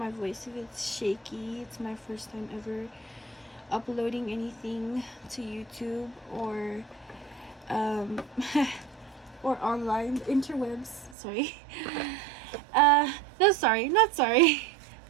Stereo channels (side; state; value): left; drops out; at 11.2 s